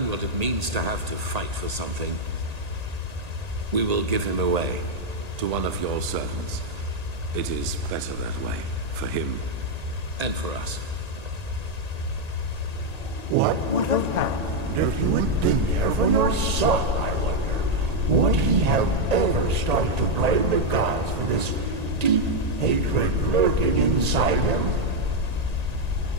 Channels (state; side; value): late; left; 1.8 ms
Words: what it means to have to fight for something. We will give him away to one of your servants. It is better that way, for him and for us. What would have happened if you had been there for your son, I wonder? Would he have ever started to blame the gods for this deep hatred lurking inside him?